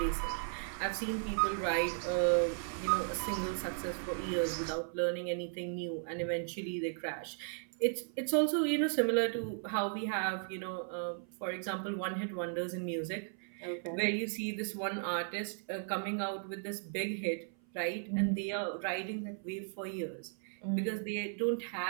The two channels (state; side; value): silent; left; 54 dB below the other